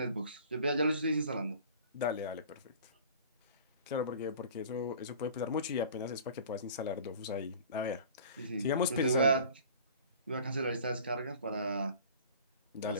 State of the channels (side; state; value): both; inverted; correlation -0.45